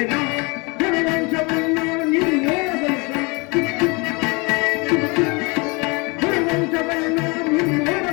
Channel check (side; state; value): right; quieter; 28.6 dB